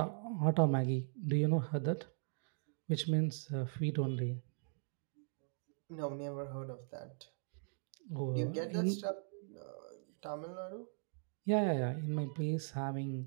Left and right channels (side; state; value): left; silent; digital silence